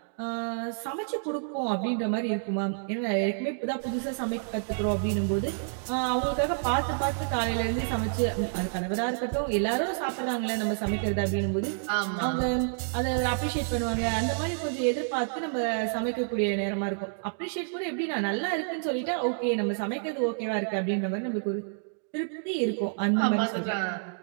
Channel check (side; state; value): left; silent; digital silence